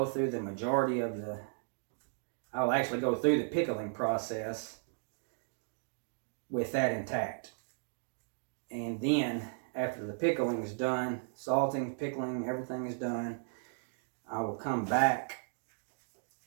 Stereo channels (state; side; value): silent; left; digital silence